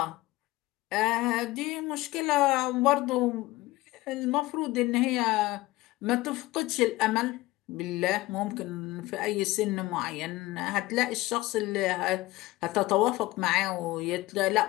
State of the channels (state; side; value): quieter; right; 18.8 dB